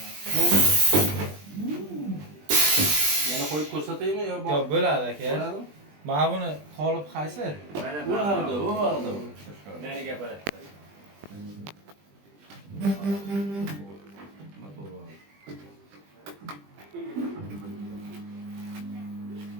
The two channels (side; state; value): left; late; 20 ms